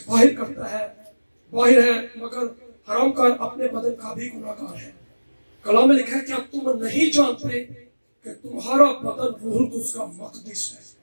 बाहर करता है, बाहर है, मगर हराम का अपने बदन का भी गुनाहगार है। कलाम में लिखा है कि अब तुम नहीं जानते कि तुम्हारा बदन रूहुल कुद्स का मक़दिस है,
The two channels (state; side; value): inverted; both; correlation -1.00